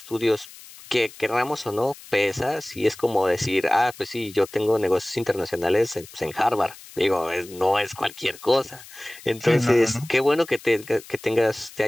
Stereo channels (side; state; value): left; noise; hiss, 19 dB below the sound